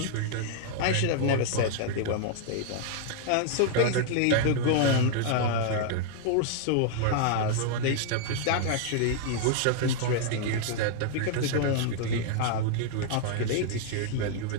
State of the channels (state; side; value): different; both; correlation -0.01